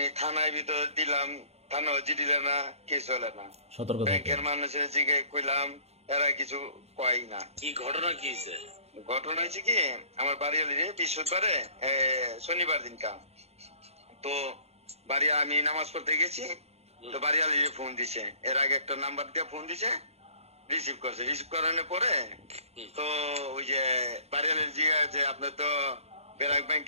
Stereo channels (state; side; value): late; left; 0.30 ms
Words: থানায় ভিতর দিলাম, থানা হচ্ছে দিলে না, কেস হলে না। সতর্ক ব্যাংকের থাকবেন। মানুষের জিগে কইলাম, এরা কিছু কয় না। কি ঘটনা কি হয়েছে? ঘটনা হয়েছে কি, আমার বাড়িয়ালিরে বৃহস্পতিবারে শনিবার দিন কাম তো বাড়ি আমি নামাজ পড়তে গেছি, তো বাড়িয়ালিরে ফোন দিছে। এর আগে একটা নাম্বার দিয়ে ফোন দিছে, রিসিভ করছে। রিসিভ করানোর পরে তো ওই যে বাড়িয়ালির জিগা যে আপনার তো ব্র্যাক